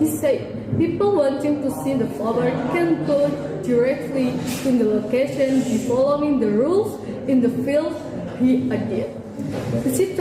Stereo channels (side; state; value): both; identical; correlation 1.00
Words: said, people wanting to see the flower can go directly to the location by following the rules in the field, he added.